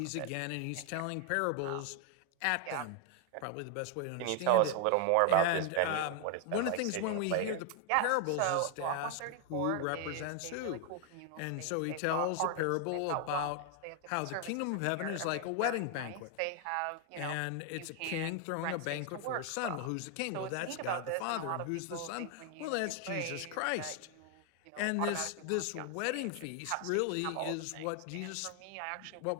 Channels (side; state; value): both; different; correlation 0.01